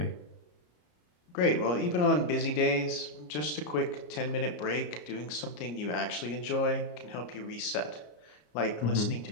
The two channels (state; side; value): late; right; 34 ms